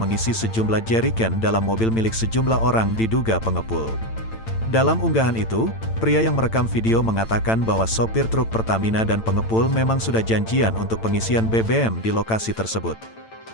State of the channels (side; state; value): right; late; 8.9 ms